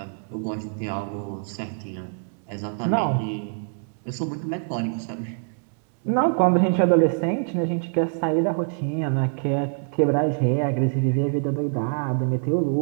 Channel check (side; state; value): left; silent; digital silence